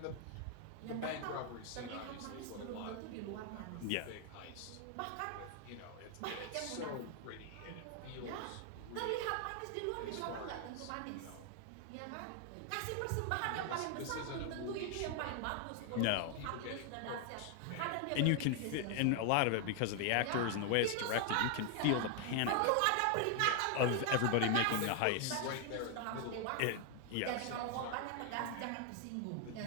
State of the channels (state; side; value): different; both; correlation 0.00